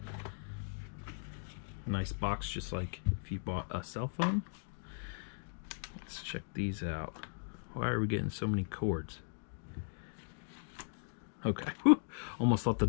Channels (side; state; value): right; silent; digital silence